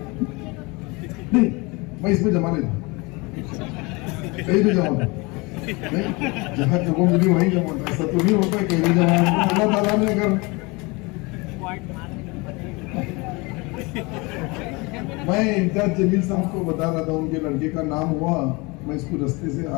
नहीं, मैं इसमें जमा नहीं था, कहीं भी जमा था नहीं, जहाँ जगह मिली वहीं जमा था। ऐसा तो नहीं होता कहीं भी जमा, अल्लाह ताला ने अगर। मैं इम्तियाज जमील साहब को बता रहा था, उनके लड़के का नाम हुआ, मैं इसको रास्ते से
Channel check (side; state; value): right; quieter; 26.3 dB